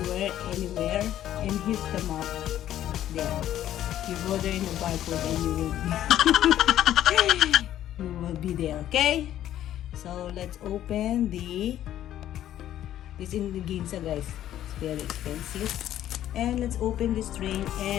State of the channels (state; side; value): quieter; right; 12.0 dB